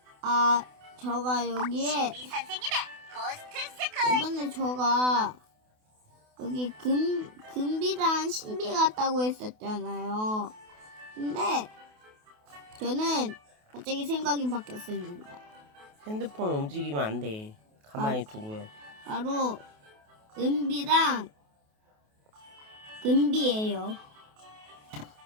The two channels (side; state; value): left; late; 28 ms